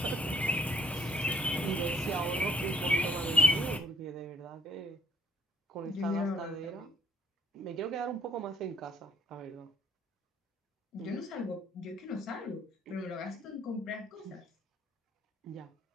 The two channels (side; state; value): both; normal; correlation 0.59